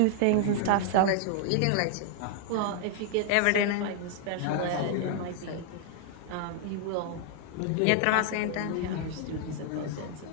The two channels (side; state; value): both; different; correlation 0.00